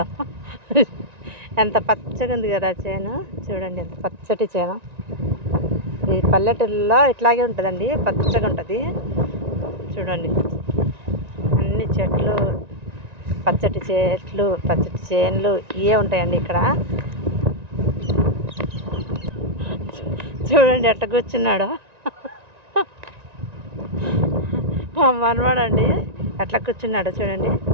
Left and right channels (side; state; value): left; late; 1.9 ms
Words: ఎంత పచ్చగా ఉంది కదా చేను. చూడండి ఎంత పచ్చటి చేను. ఈ పల్లెటూరులో ఇట్లాగే ఉంటుందండి, పచ్చగా ఉంటుంది. చూడండి అన్ని చెట్లు, పచ్చటి చెట్లు, పచ్చటి చేనులు ఇవే ఉంటాయండి ఇక్కడ. చూడండి ఎట్ట కూర్చున్నాడో మా మనవాడండి, ఎట్లా కూర్చున్నాడో చూడండి.